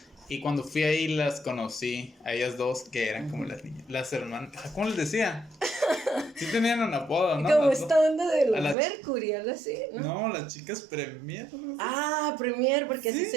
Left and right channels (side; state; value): left; drops out; at 8.8 s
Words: Y cuando fui ahí las conocí, a ellas dos, que eran como las niñas, las hermanas, ¿cómo les decía? Sí tenían un apodo, ¿no? Como Las esta dos. onda de los A las Mercury, algo así, ¿no? No, las chicas Premier, algo así. Ah, Premier, porque ¿Sí? así